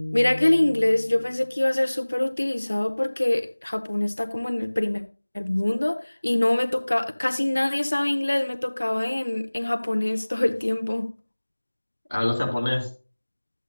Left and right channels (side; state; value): both; inverted; correlation -1.00